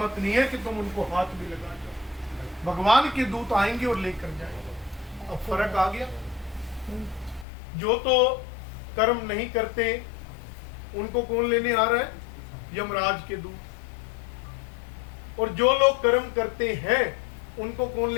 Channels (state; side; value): drops out; right; at 7.5 s